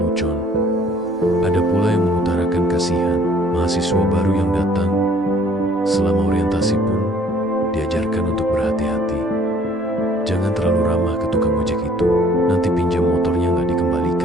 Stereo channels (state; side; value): normal; both; correlation 0.59